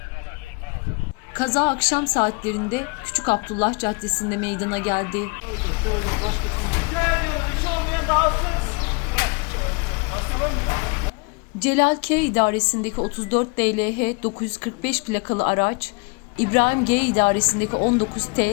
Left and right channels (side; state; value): right; quieter; 31.2 dB